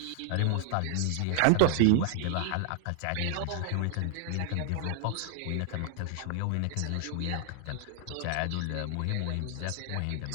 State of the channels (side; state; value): both; different; correlation 0.00